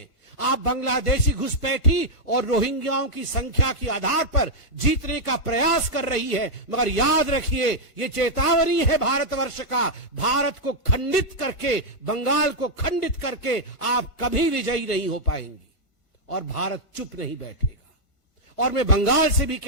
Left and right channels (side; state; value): right; late; 1.4 ms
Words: आप बांग्लादेशी घुसपैठी और रोहिंग्याओं की संख्या के आधार पर जीतने का प्रयास कर रही है, मगर याद रखिए, ये चेतावनी है भारतवर्ष का। भारत को खंडित करके, बंगाल को खंडित करके आप कभी विजयी नहीं हो पाएंगी और भारत चुप नहीं बैठेगा। और मैं बंगाल से भी